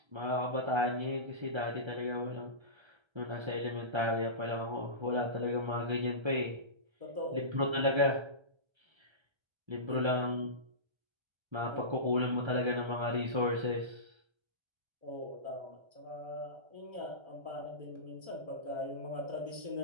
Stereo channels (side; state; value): left; late; 1.3 ms